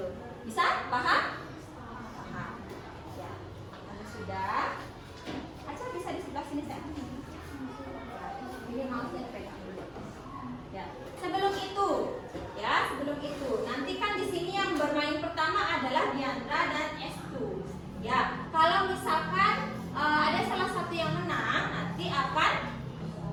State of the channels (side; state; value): both; identical; correlation 1.00